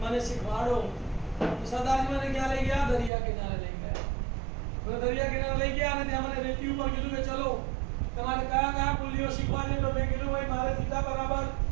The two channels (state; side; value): drops out; left; at 3.1 s